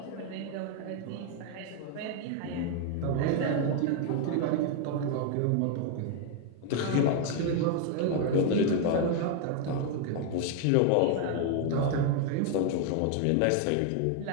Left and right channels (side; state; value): both; different; correlation 0.00